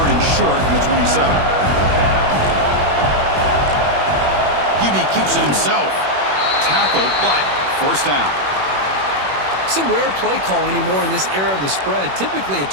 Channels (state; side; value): late; left; 21 ms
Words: and short from the 27. QB keeps it himself. Tackled, but first down. It's a rare play call anymore in this era of the spread. Typically,